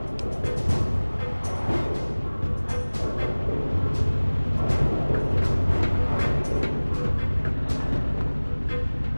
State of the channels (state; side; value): inverted; both; correlation -1.00